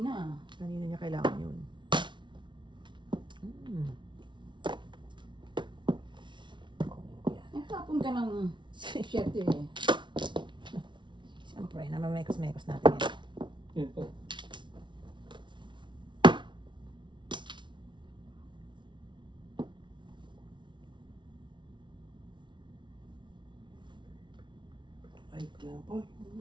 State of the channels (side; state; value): left; late; 0.24 ms